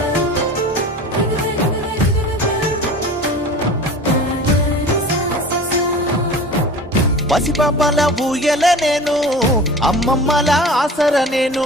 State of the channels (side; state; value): both; normal; correlation 0.37